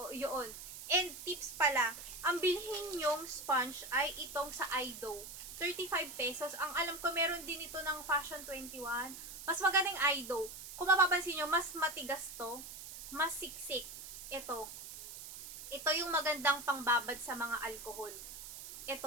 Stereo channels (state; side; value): noise; right; hiss, 11 dB below the sound